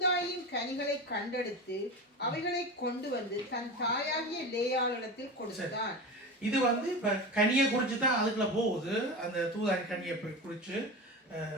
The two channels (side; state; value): both; normal; correlation 0.27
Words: கனிகளை கண்டெடுத்து அவைகளை கொண்டு வந்து தன் தாயாகிய லேயாளிடத்தில் கொடுத்தான். இது இப்ப கனியை குறிச்சு தான் அதுக்குள்ள போகுது. அந்த தூதாயின் கனியை குறிச்சு